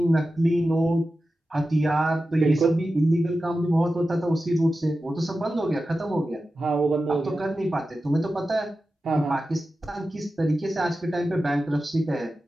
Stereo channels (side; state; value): both; normal; correlation 0.93